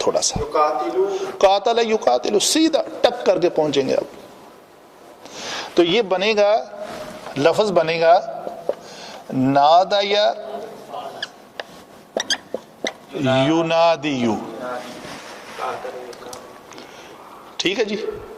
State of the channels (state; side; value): identical; both; correlation 1.00